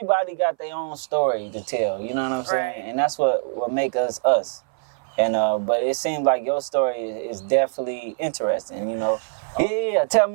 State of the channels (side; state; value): left; silent; 59 dB below the other